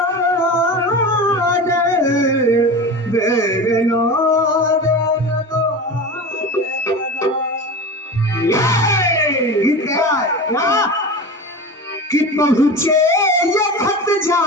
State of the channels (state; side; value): normal; both; correlation 0.30